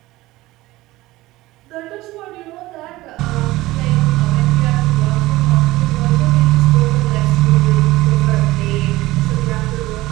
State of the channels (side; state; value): left; quieter; 18.3 dB